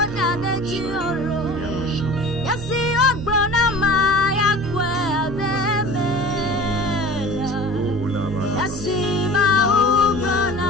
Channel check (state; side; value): noise; right; hum, 12 dB below the sound